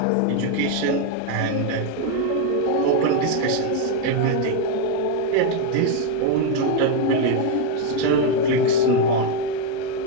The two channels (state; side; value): different; both; correlation 0.01